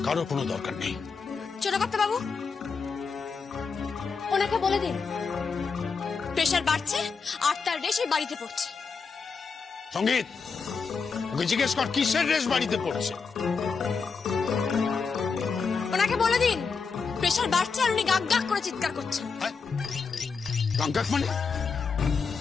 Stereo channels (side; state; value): right; quieter; 5.2 dB